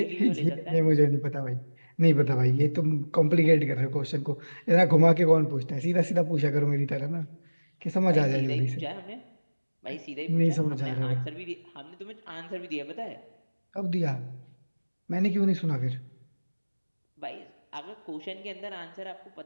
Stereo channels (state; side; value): inverted; both; correlation -1.00